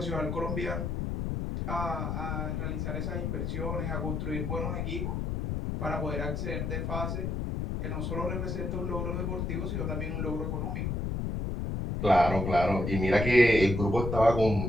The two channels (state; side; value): noise; left; rumble, 2 dB below the sound